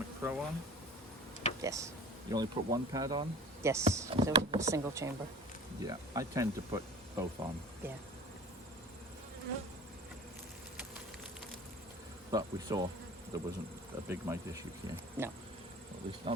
Pro on? Yes. You only put one pad on? Yes. So it was a single chamber. Yeah, I tend to put both on. Yeah. But we saw there wasn't a big mite issue here. No. Well, at least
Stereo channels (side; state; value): both; normal; correlation 0.41